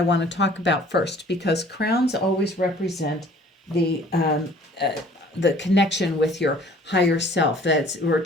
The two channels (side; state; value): both; normal; correlation 0.53